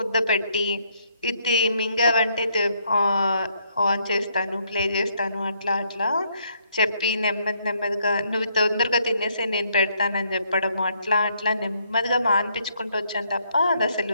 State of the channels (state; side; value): inverted; both; correlation -0.71